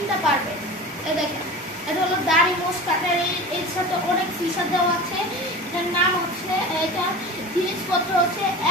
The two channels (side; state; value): both; normal; correlation 0.33